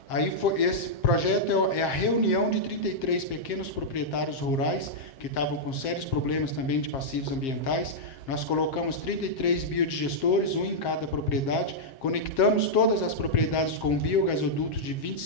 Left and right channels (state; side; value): late; right; 7.5 ms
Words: Aí esse projeto é a reunião de 33 pequenos proprietários rurais que estavam com sérios problemas também de passivos ambientais. Nós colocamos 33 biodigestores, um em cada propriedade, conectamos todas as propriedades com um biogasoduto de